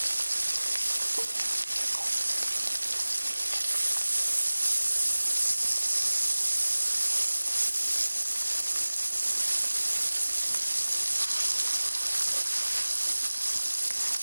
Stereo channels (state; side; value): inverted; both; correlation -1.00